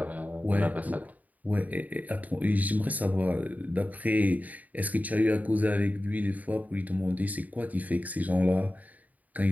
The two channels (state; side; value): late; left; 0.076 ms